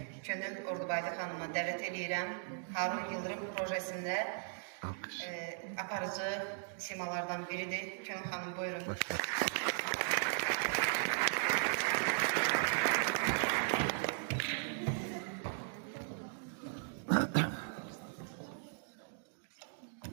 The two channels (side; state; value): left; silent; digital silence